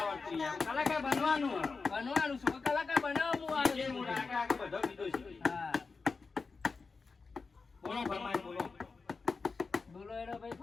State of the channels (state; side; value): quieter; right; 4.5 dB